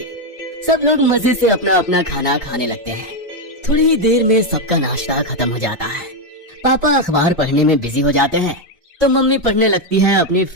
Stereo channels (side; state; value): both; normal; correlation 0.05